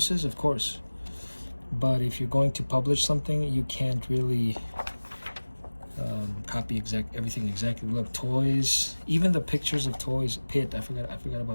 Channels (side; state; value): both; inverted; correlation -1.00